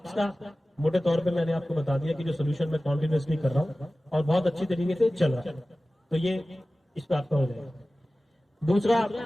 का मोटे तौर पर मैंने आपको बता दिया कि जो सोल्यूशन मैं कॉन्टिन्यूसली कर रहा हूँ और बहुत अच्छी तरीके से चल रहा है, तो ये इस पर आपका हो जाएगा। दूसरा,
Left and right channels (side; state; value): both; normal; correlation 0.96